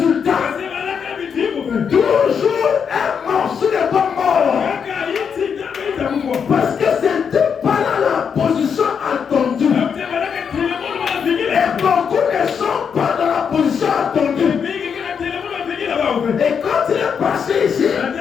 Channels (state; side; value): quieter; right; 6.9 dB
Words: Toujours un morceau de bois mort. Parce que c'était pas là la position attendue. Et beaucoup ne sont pas dans la position attendue. Et quand il est passé ici,